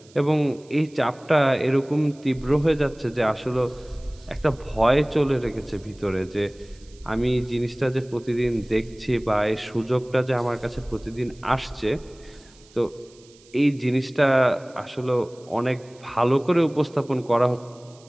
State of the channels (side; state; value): right; noise; hiss, 27 dB below the sound